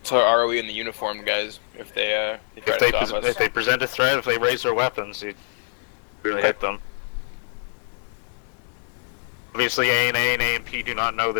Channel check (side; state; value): right; silent; digital silence